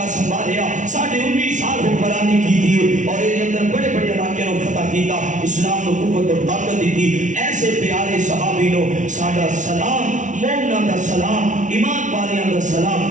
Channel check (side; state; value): left; late; 0.37 ms